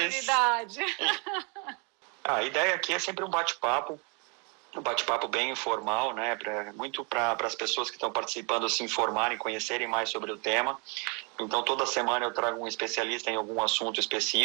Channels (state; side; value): quieter; left; 33.9 dB